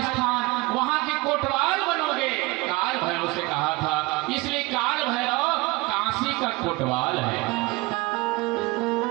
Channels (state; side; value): quieter; left; 23.2 dB